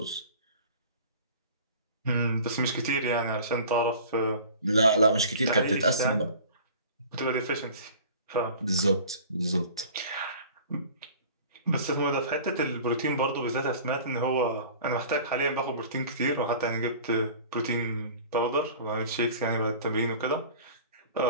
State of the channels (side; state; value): both; inverted; correlation -0.43